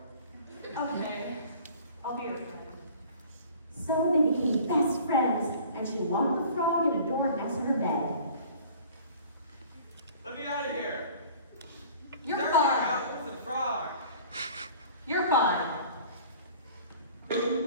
Probably. Okay. I'll be your friend. So they became best friends, and she locked the frog in a door next to her bed. Let me out of here. You're Get me fine. out with the frog. You're fine.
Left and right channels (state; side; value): inverted; both; correlation -0.47